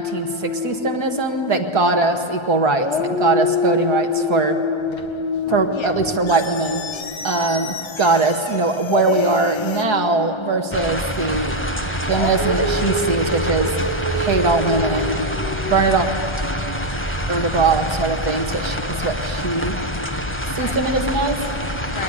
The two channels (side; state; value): right; late; 1.3 ms